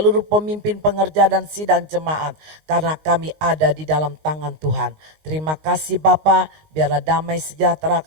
pemimpin pengerja dan sidang jemaat. Karena kami ada di dalam tangan Tuhan. Terima kasih Bapa, biarlah damai sejahtera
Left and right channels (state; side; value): late; left; 19 ms